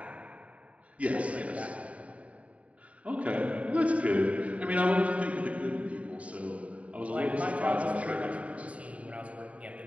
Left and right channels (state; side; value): late; left; 0.066 ms